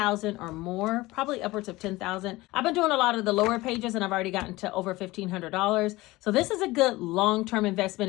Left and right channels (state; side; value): quieter; right; 19.9 dB